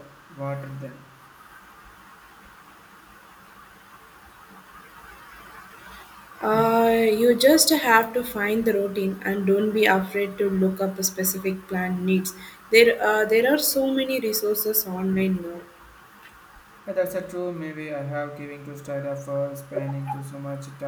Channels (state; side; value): identical; both; correlation 1.00